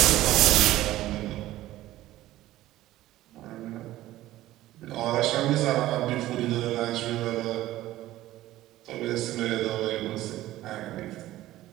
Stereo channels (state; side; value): quieter; left; 15.4 dB